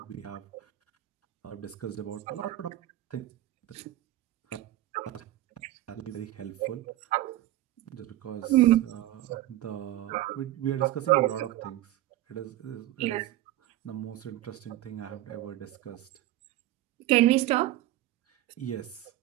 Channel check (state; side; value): quieter; left; 15.0 dB